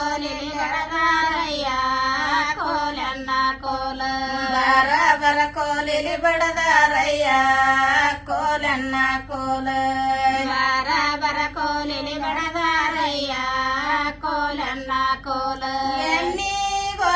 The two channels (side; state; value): both; identical; correlation 1.00